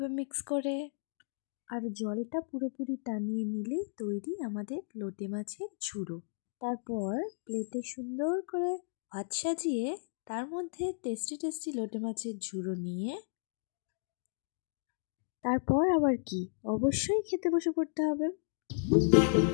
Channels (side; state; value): right; silent; digital silence